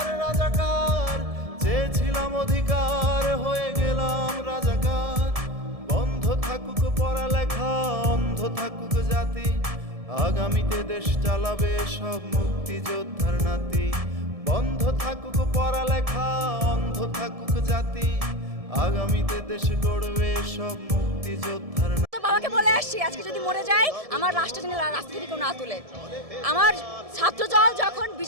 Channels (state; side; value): late; left; 1.7 ms